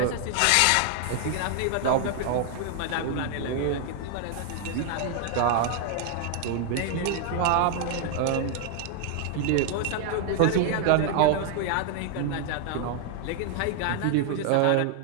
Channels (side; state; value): both; different; correlation 0.00